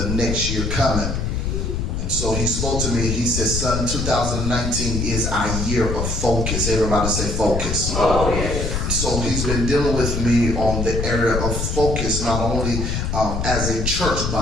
next year coming. And so he spoke to me. He said, "Son, 2019 is our year of focus." Everybody say focus. Oh, yes. So he's been dealing with me on the area of focus, not only as a church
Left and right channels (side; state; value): left; noise; rumble, 1 dB below the sound